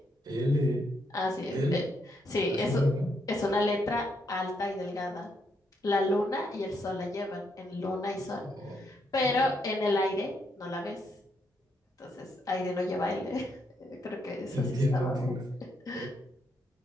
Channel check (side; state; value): both; normal; correlation 0.77